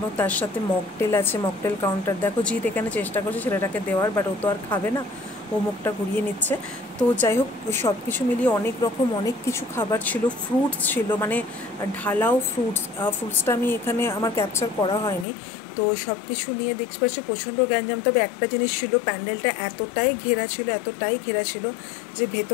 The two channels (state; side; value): drops out; right; at 15.2 s